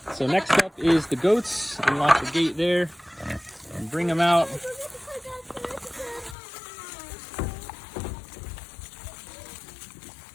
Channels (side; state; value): right; drops out; at 6.4 s